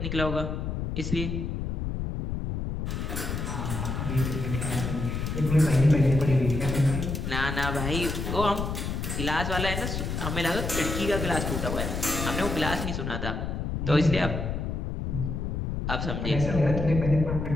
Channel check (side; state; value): left; noise; rumble, 3 dB below the sound